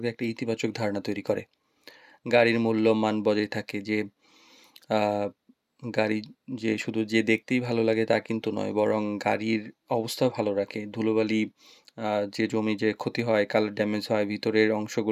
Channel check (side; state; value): both; identical; correlation 1.00